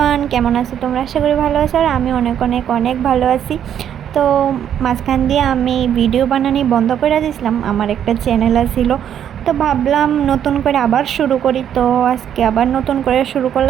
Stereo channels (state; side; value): quieter; left; 9.5 dB